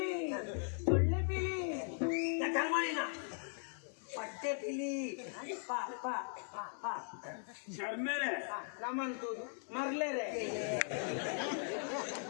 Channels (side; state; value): right; silent; 52 dB below the other